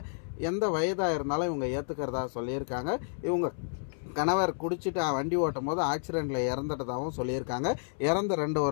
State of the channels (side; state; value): right; silent; 57 dB below the other